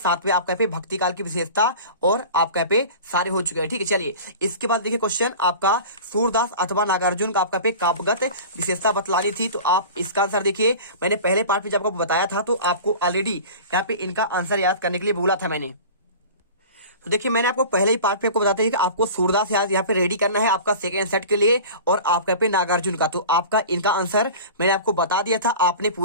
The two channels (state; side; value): inverted; both; correlation -0.37